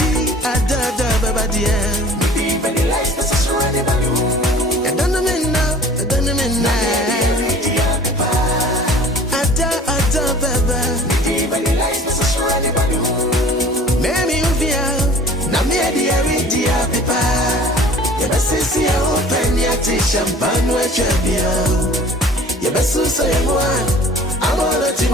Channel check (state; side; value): normal; both; correlation 0.47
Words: adada baba dia di bani life na sasurani balu adana menna ada baba di bani life na sasurani balu memi uvia na me dia ridia pepa Yabasisi ya open ya ti champagne we chabia Yabasusa ya mwa Amono